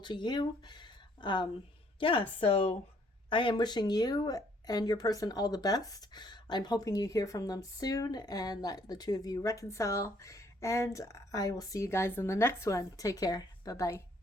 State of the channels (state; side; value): normal; both; correlation 0.65